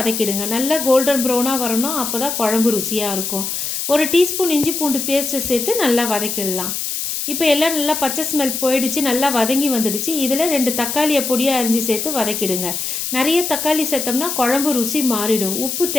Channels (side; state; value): left; noise; hiss, 3 dB below the sound